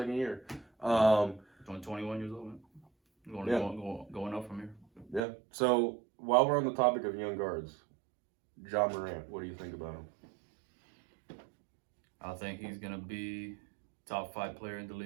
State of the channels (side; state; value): left; drops out; at 5.2 s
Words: year. Only 21 years old, man. Going up from here. Yeah. So while we're on the topic of young guards, Ja Morant, what do you think about him? I think he's gonna be top 5 player in the